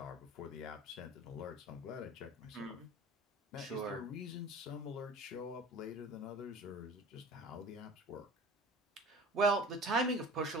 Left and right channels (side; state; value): both; normal; correlation 0.40